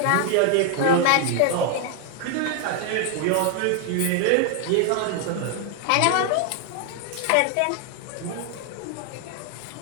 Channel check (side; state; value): both; different; correlation 0.00